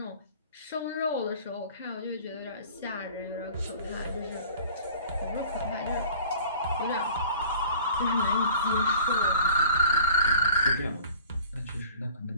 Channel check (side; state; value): both; inverted; correlation -0.47